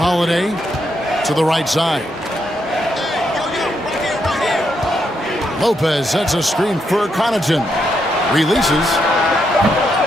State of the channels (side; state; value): both; normal; correlation 0.80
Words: to the right side. Lopez sets a screen for Connaughton. Releases.